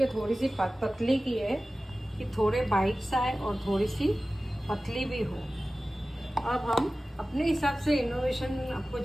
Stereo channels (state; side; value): normal; both; correlation 0.96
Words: थोड़ी सी पतली की है कि थोड़े बाइट्स आए और थोड़ी सी पतली भी हो। अब हम अपने हिसाब से इनोवेशन, आपको